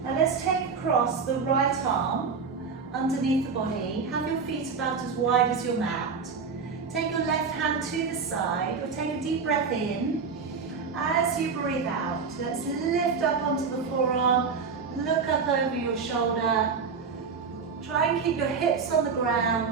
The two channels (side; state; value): left; quieter; 5.4 dB